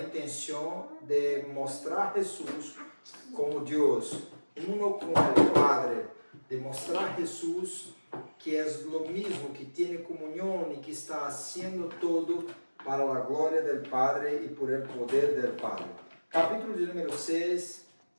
intenção de mostrar Jesus como Deus, uno com o Padre, de mostrar Jesus que é o mesmo, que tem comunhão e que está fazendo todo para a glória do Padre e por el poder do Padre. Capítulo de número 6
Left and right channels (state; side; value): inverted; both; correlation -1.00